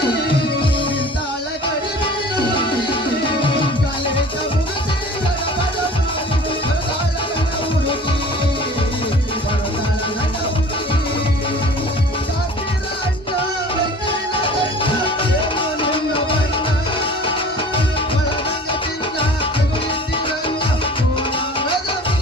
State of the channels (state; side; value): normal; both; correlation 0.44